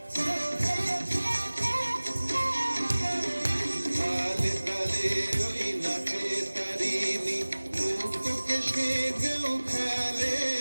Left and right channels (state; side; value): inverted; both; correlation -1.00